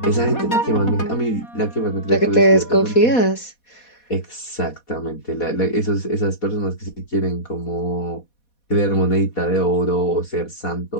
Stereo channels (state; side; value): late; right; 4.2 ms